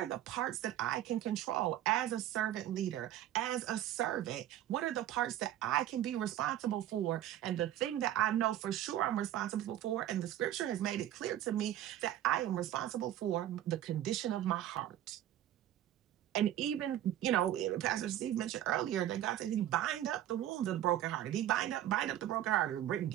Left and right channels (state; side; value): quieter; left; 12.3 dB